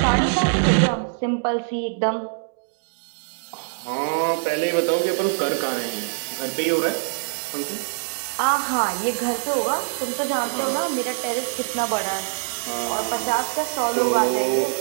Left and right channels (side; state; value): left; silent; digital silence